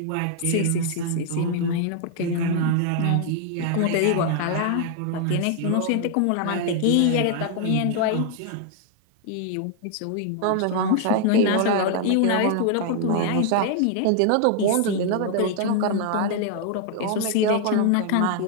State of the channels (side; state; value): both; different; correlation 0.00